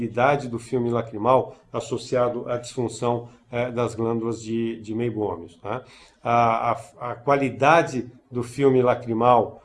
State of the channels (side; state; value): both; identical; correlation 1.00